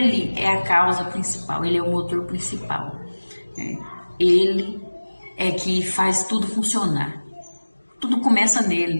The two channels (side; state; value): both; inverted; correlation -1.00